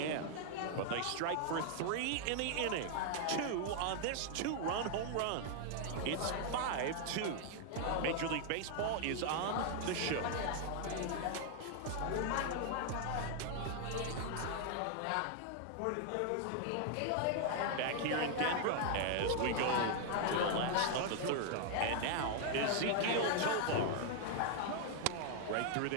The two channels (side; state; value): both; different; correlation 0.00